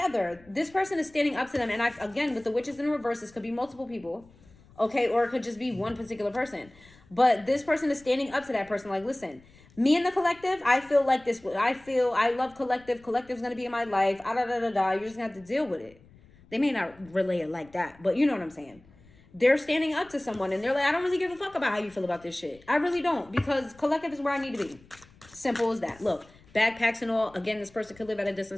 this person is standing up to them. And again, with the witches in reverse, this could be multiple people, okay? Or it could just be one particular person. But this person is standing up to that person like, listen, me and the collective, I feel like this. I love collective. Collective's going to be in my life. You're just going to have to deal with it. They may not relay it like that, but you know what I'm saying. They're standing up to someone and they're like, I don't really give a fuck about how you feel about this shit. I really don't, because collective is where I need to be. Simple as that. Look, backpacks and all. Again, this person could live at a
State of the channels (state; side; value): noise; left; rumble, 26 dB below the sound